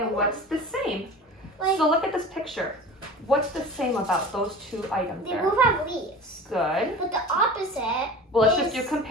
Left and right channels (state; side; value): normal; both; correlation 0.37